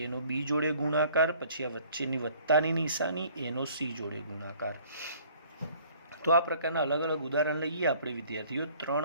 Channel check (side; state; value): both; inverted; correlation -0.56